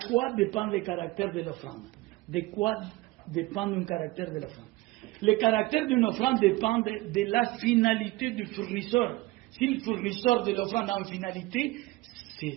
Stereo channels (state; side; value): quieter; left; 20.0 dB